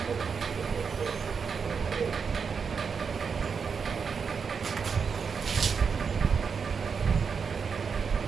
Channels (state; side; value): quieter; left; 5.9 dB